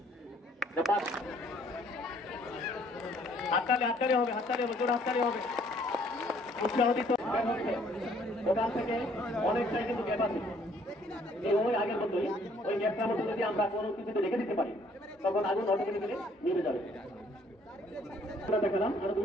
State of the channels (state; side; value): normal; both; correlation 0.62